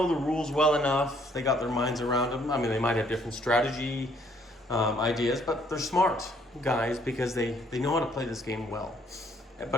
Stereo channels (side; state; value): both; normal; correlation 0.65